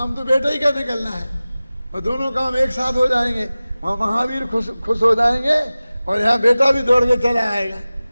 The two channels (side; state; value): both; inverted; correlation -0.97